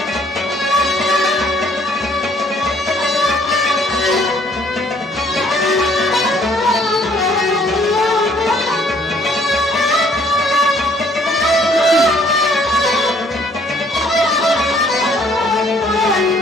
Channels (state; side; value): normal; both; correlation 0.62